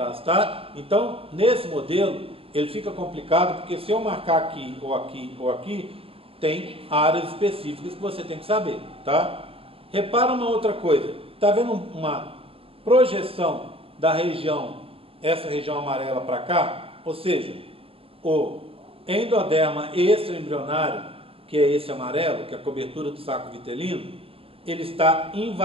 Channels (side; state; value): left; late; 0.27 ms